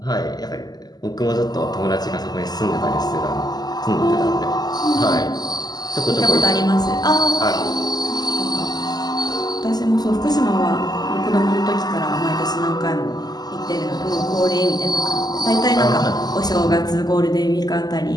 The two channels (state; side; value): late; right; 0.20 ms